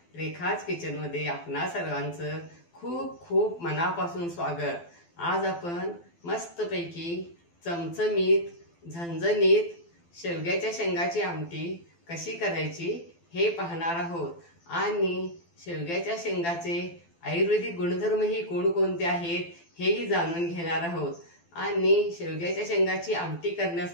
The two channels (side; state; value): right; late; 12 ms